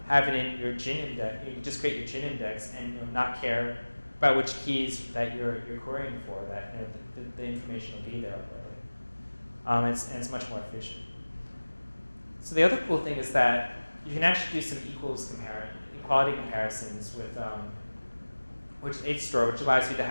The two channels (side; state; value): both; inverted; correlation -1.00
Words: have it in your gin index. You can just create your gin index and not care about which keys that you're querying for. That the information will be there already. And it's much more efficient. So the other cool thing is that you can actually do some equality comparisons with HStore, which allows you to